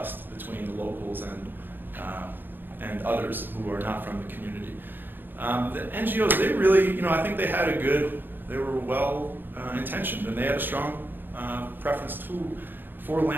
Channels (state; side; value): late; left; 0.095 ms